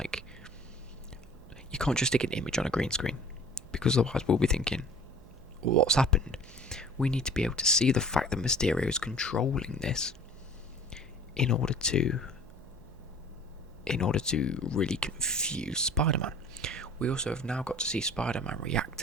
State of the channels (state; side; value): noise; right; hum, 22 dB below the sound